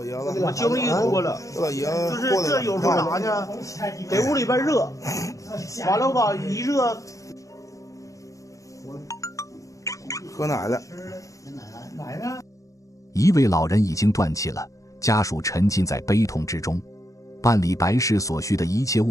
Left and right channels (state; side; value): late; right; 0.16 ms